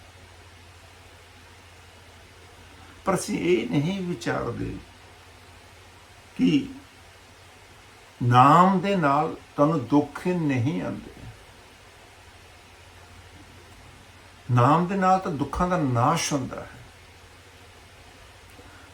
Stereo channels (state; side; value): identical; both; correlation 1.00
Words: ਪਰ ਅਸੀਂ ਇਹ ਨਹੀਂ ਵਿਚਾਰਦੇ ਕਿ ਨਾਮ ਦੇ ਨਾਲ ਤੁਹਾਨੂੰ ਦੁੱਖ ਨਹੀਂ ਆਉਂਦੇ। ਨਾਮ ਦੇ ਨਾਲ ਤਾਂ ਦੁੱਖਾਂ ਦਾ ਨਾਸ਼ ਹੁੰਦਾ ਹੈ।